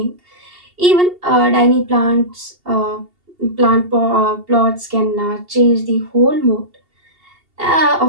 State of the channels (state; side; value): late; left; 2.8 ms